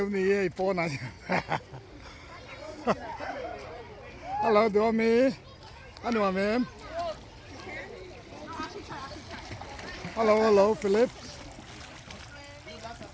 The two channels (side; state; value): both; identical; correlation 1.00